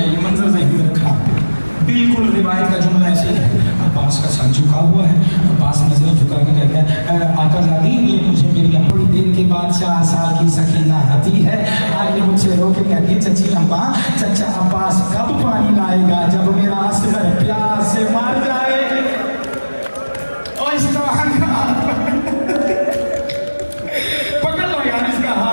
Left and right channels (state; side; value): inverted; both; correlation -1.00